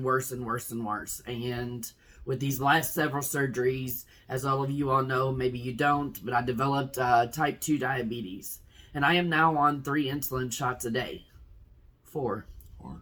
worse and worse and worse. And with these last several surgeries, as all of you all know, maybe you don't, but I developed type 2 diabetes. And I am now on 3 insulin shots a day. 4.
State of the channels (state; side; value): identical; both; correlation 1.00